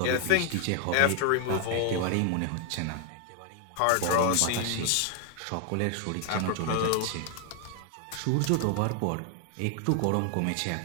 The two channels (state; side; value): different; both; correlation 0.00